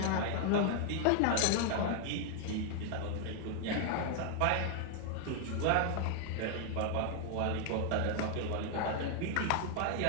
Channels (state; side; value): different; both; correlation 0.00